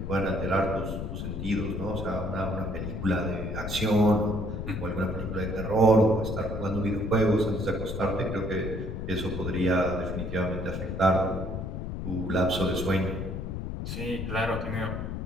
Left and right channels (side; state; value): left; noise; rumble, 5 dB below the sound